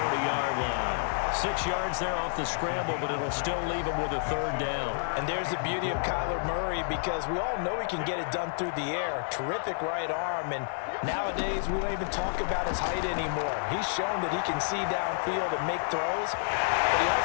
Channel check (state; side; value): silent; right; 58 dB below the other